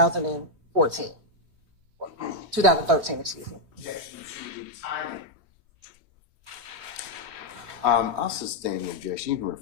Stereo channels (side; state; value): left; late; 3.2 ms